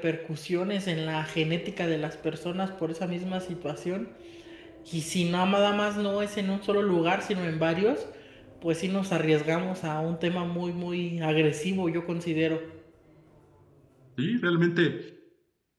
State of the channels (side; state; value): both; identical; correlation 1.00